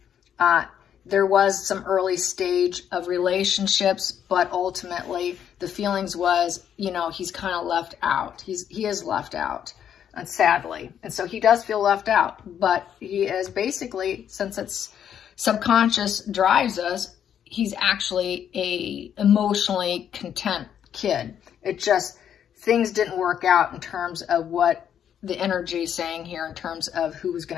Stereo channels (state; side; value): quieter; right; 9.1 dB